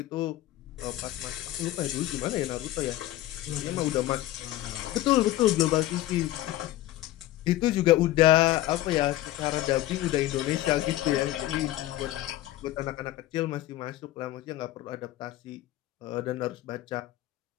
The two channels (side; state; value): right; quieter; 15.1 dB